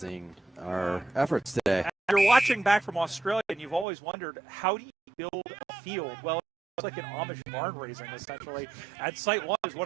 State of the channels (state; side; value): drops out; left; at 3.9 s